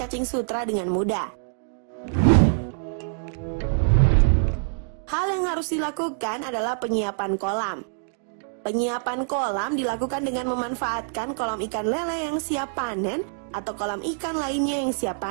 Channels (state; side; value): silent; left; digital silence